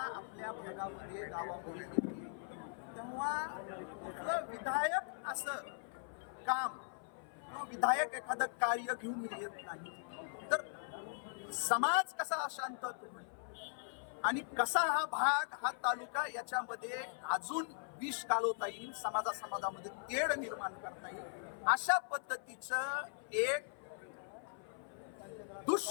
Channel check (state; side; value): silent; right; 51 dB below the other